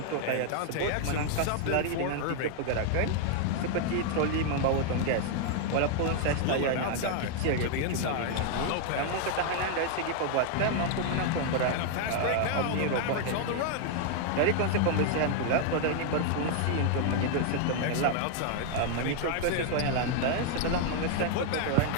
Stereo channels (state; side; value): different; both; correlation 0.00